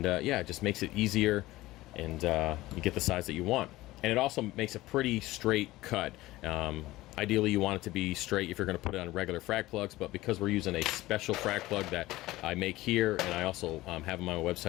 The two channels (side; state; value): right; quieter; 17.8 dB